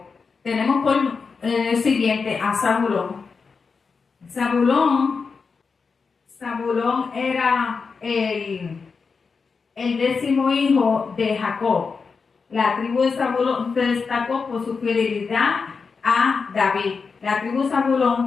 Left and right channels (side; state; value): right; quieter; 5.1 dB